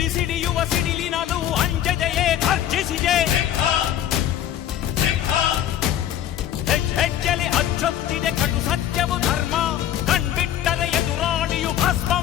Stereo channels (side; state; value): right; quieter; 11.1 dB